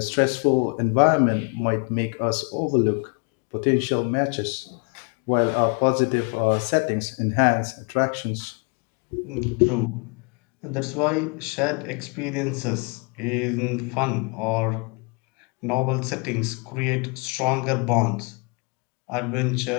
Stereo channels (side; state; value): right; quieter; 33.5 dB